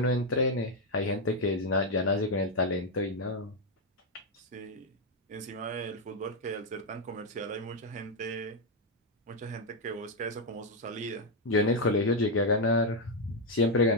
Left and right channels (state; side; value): normal; both; correlation 0.01